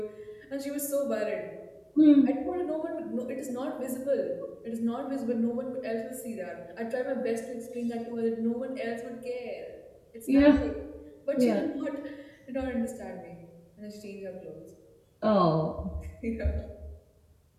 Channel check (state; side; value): identical; both; correlation 1.00